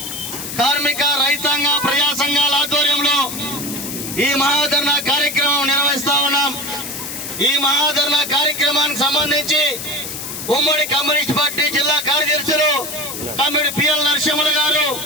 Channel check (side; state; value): left; noise; hiss, 7 dB below the sound